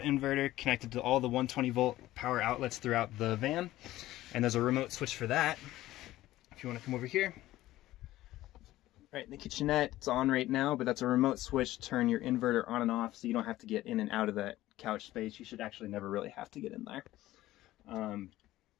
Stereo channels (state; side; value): quieter; right; 15.7 dB